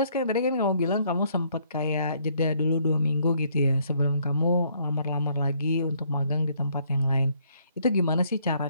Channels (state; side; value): inverted; both; correlation -0.67